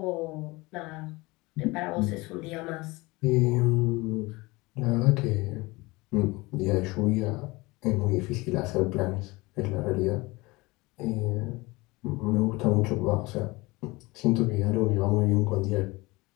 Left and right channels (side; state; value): right; quieter; 23.0 dB